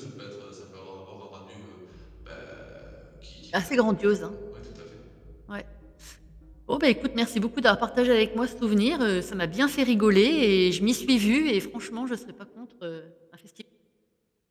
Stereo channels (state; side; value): identical; both; correlation 1.00